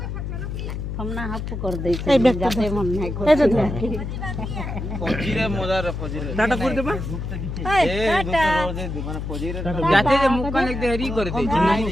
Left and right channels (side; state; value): left; noise; hum, 5 dB below the sound